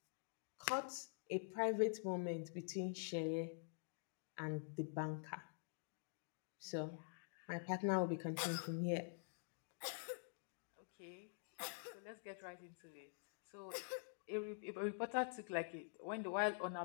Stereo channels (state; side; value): silent; right; digital silence